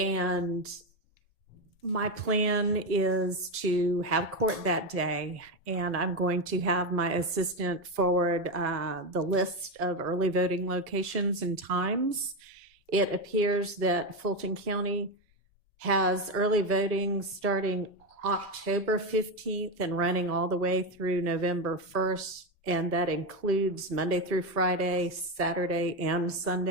My plan is to have court that day, and I'm going to have my assistant forward the list of early voting locations and times. It appears that Fulton County has early voting starting October 15th and running all the way through November 1st, and that includes Monday through Friday, Saturday and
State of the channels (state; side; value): normal; both; correlation 0.12